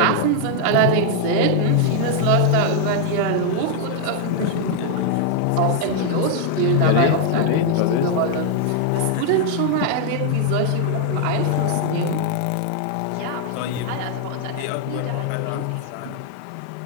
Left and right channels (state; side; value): different; both; correlation 0.00